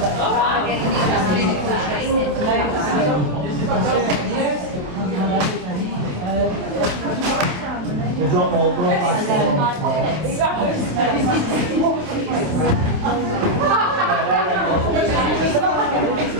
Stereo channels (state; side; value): late; left; 27 ms